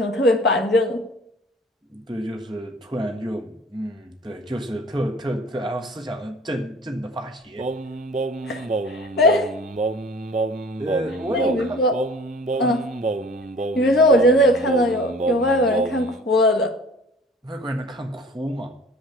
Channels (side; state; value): both; normal; correlation 0.47